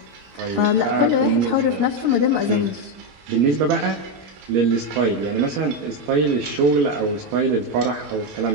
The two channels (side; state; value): left; late; 21 ms